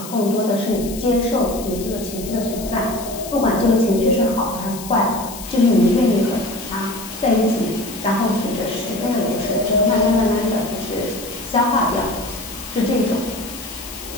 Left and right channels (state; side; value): noise; left; hiss, 13 dB below the sound